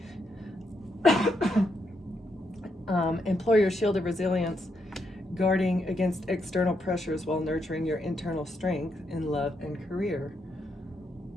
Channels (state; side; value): normal; both; correlation 0.79